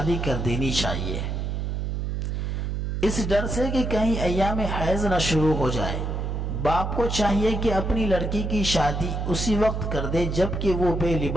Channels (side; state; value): right; noise; hum, 2 dB below the sound